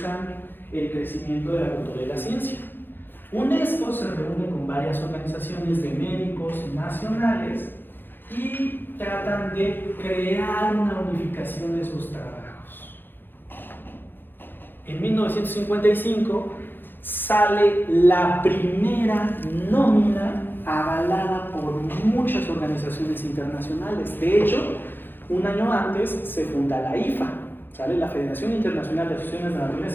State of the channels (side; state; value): right; late; 0.097 ms